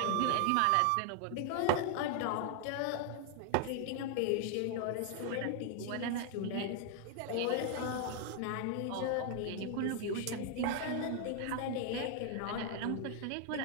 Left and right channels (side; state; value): both; different; correlation 0.00